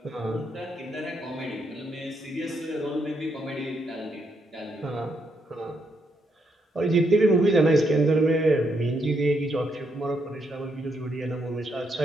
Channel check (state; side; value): normal; both; correlation 0.77